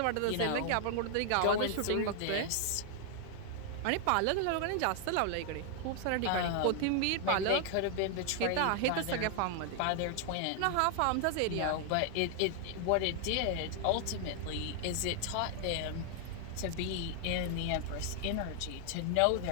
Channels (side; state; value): both; different; correlation 0.00